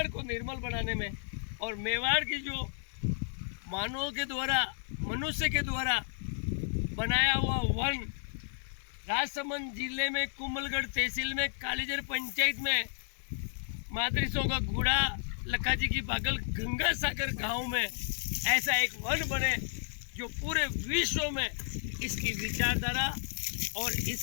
को निर्मल बनाने में और मेवाड़ की जो मानवों के द्वारा, मनुष्य के द्वारा बनाया हुआ वन राजसमंद जिले में कुंभलगढ़ तहसील में कालीजर पंचायत में मादरिसों का गुड़ा लक्काजी की बागल गंगा सागर गांव में ऐसा एक वन बने जो पूरे विश्व में इसकी विचारधारा और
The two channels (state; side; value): silent; right; 56 dB below the other